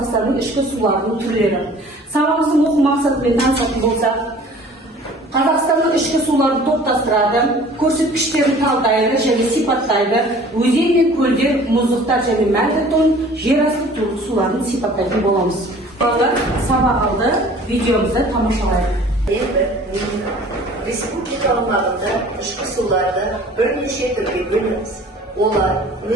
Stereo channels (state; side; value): normal; both; correlation 0.49